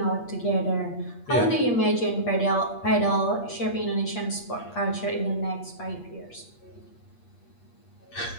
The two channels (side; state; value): right; late; 8.4 ms